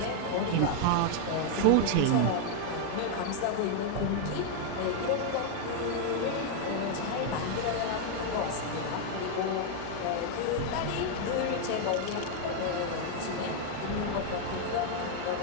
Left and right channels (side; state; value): both; different; correlation 0.00